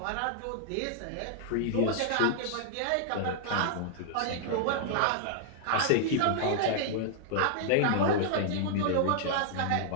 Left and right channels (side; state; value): both; different; correlation -0.01